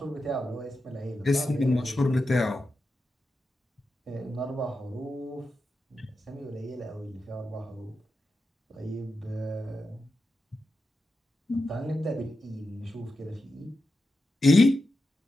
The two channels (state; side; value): normal; both; correlation 0.90